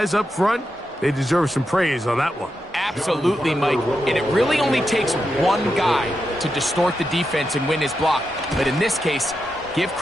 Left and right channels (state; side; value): normal; both; correlation 0.87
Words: up front, they deserve some praise on that one. Absolutely, Mike. And it really only takes one guy to distort the defense and win his block. But in this case, give